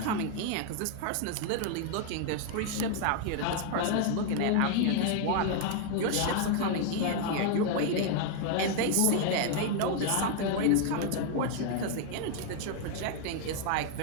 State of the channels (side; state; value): both; different; correlation 0.00